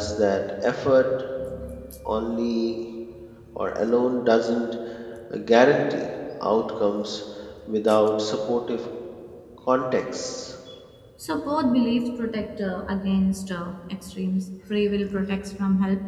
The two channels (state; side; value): identical; both; correlation 1.00